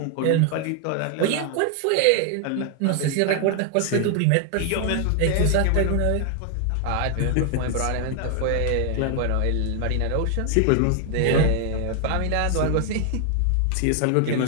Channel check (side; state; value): both; different; correlation 0.00